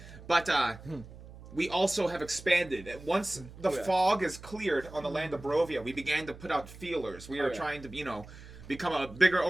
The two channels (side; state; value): right; noise; hum, 17 dB below the sound